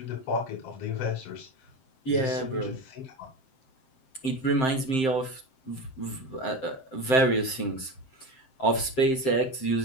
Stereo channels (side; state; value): right; late; 7.7 ms